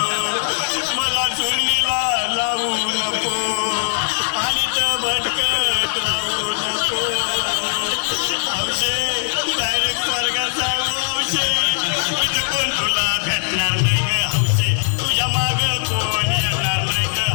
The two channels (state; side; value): silent; right; digital silence